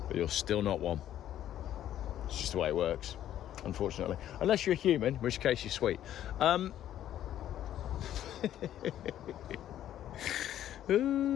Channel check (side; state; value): right; quieter; 11.7 dB